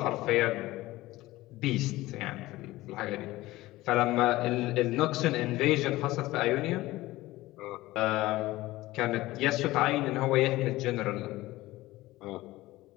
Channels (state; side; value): quieter; right; 18.0 dB